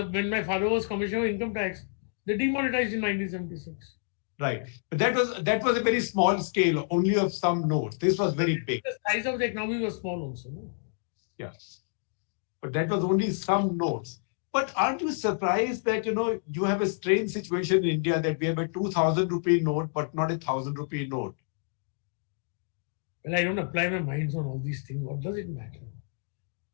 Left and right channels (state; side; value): silent; right; digital silence